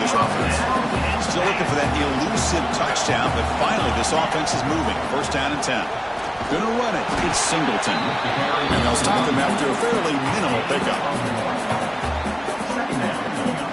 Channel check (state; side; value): identical; both; correlation 1.00